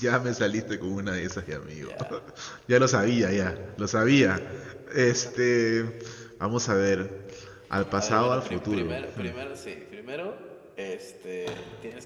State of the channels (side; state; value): both; identical; correlation 1.00